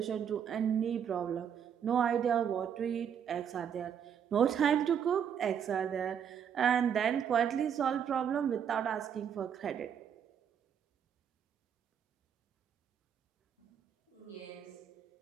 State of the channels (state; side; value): quieter; left; 8.2 dB